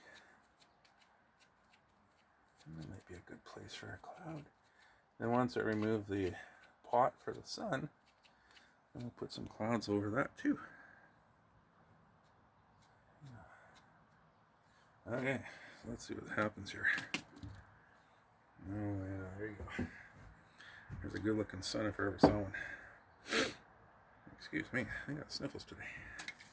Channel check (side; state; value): both; identical; correlation 1.00